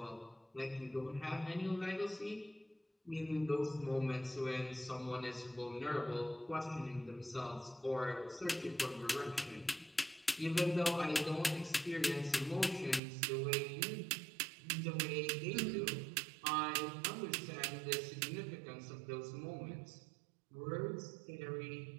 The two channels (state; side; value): drops out; left; at 13.0 s